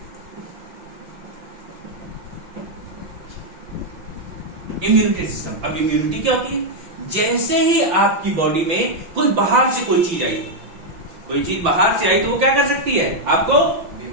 Immunity system. अब इम्यूनिटी क्या होती है? जैसे ही आपकी बॉडी में कोई बाहर से कोई चीज आई, कोई चीज बाहर से आई तो वो क्या कर सकती है? आपको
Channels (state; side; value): late; left; 5.9 ms